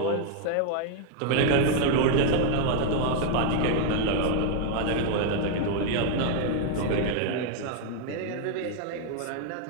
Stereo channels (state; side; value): different; both; correlation 0.00